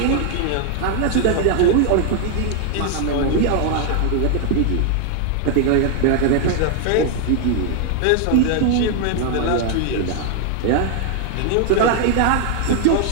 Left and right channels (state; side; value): different; both; correlation 0.00